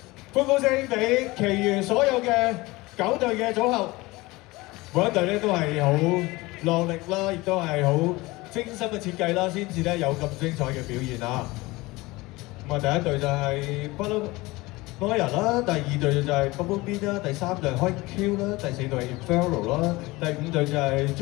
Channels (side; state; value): right; quieter; 21.4 dB